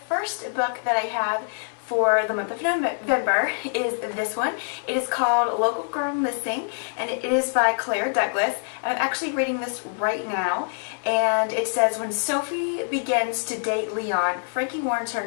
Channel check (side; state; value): right; silent; digital silence